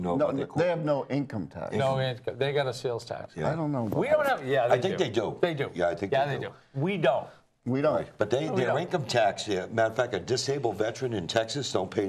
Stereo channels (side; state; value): both; identical; correlation 1.00